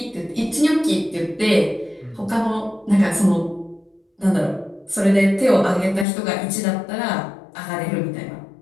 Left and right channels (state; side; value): drops out; right; at 6.1 s